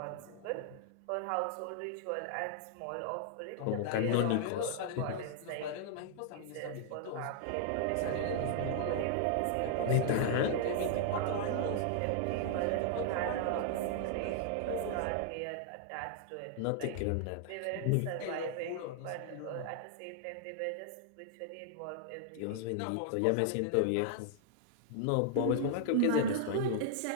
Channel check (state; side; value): different; both; correlation -0.01